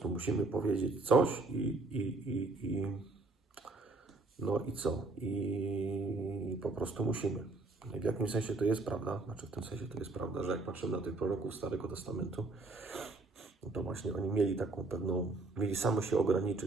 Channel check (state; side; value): quieter; left; 3.4 dB